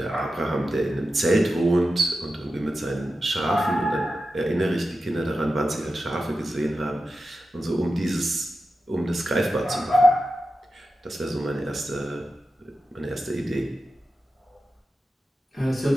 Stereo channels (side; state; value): both; normal; correlation 0.92